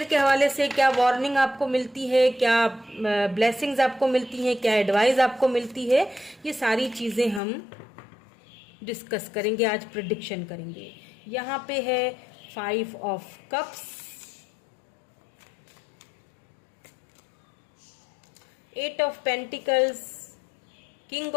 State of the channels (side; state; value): right; drops out; at 7.4 s